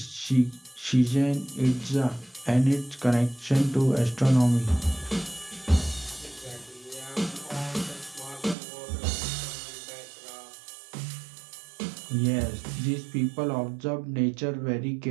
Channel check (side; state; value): left; drops out; at 8.6 s